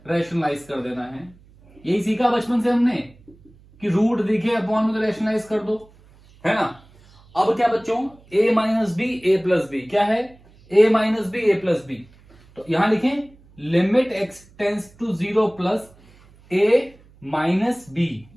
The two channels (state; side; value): noise; right; hum, 27 dB below the sound